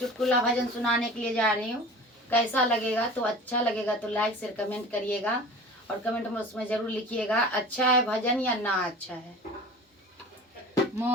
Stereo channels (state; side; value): normal; both; correlation 0.39